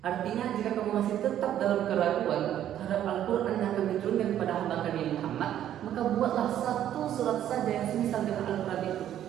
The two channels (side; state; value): left; quieter; 11.2 dB